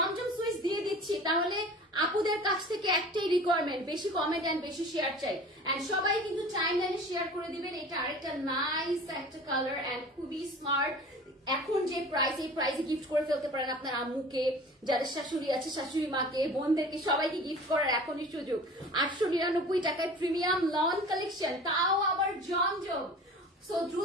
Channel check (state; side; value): normal; both; correlation 0.41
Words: সুইচ দিয়ে দিচ্ছি, তাহলে আপুদের কাছ থেকে একটাই রিকোয়ারমেন্ট, বেশি কমেন্ট এন্ড বেশি শেয়ার চাই। এন্ড সবাই কিন্তু টাইম লাইনে শেয়ার করে দিবেন। এটা আরেকটা নাইস একটা কালার এন্ড খুবই স্মার্ট, এখন যে প্রাইস, এই প্রাইসে গিফট করে ফেলতে পারেন আপনার আম্মুকে, যাদের শাশুড়ি আছে শাশুড়ি মাকে, বোনদেরকে, সবাইকে গিফট করার এখনই সুযোগ। 899 টাকায় প্রিমিয়াম লন কালেকশন, তাও আবার জমজম। সো